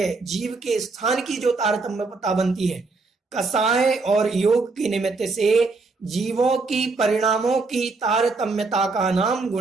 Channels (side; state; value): left; quieter; 3.9 dB